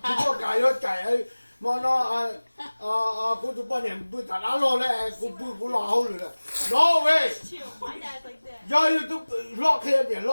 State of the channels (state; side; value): inverted; both; correlation -1.00